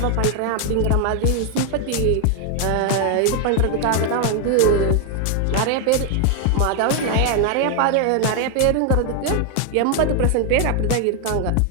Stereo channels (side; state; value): both; different; correlation 0.00